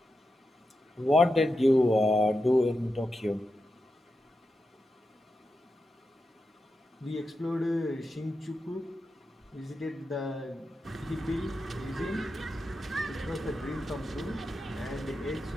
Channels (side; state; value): both; normal; correlation 0.89